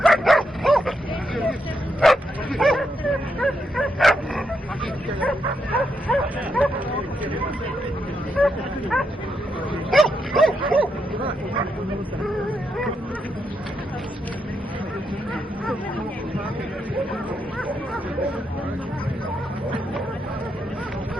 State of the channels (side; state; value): both; normal; correlation 0.81